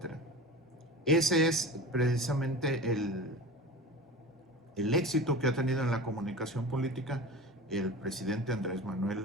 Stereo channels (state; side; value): normal; both; correlation 0.32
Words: Ese es precisamente el éxito que ha tenido en la comunicación política el presidente Andrés